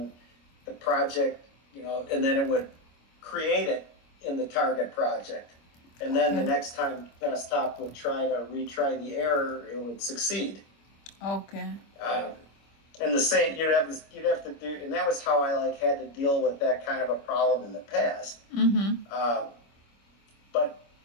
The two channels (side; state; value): right; late; 25 ms